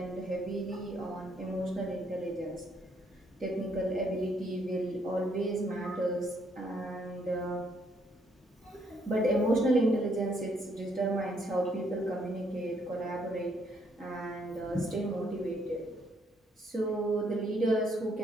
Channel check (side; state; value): both; normal; correlation 0.70